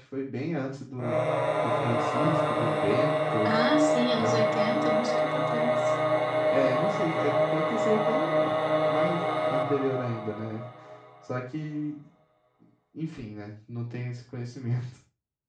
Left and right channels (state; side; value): identical; both; correlation 1.00